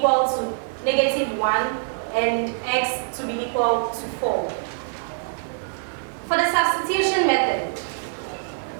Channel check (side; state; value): left; silent; digital silence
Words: to negative 1 and x to be equal to 4. For the substitution method,